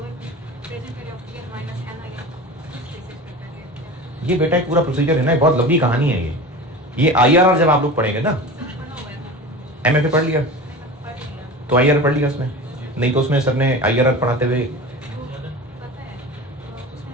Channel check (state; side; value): normal; both; correlation 0.32